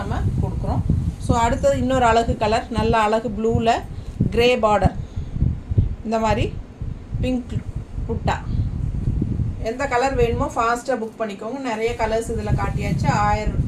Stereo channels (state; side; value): identical; both; correlation 1.00